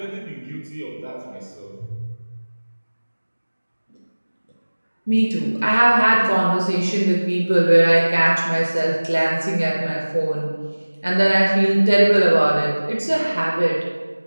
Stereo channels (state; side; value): inverted; both; correlation -1.00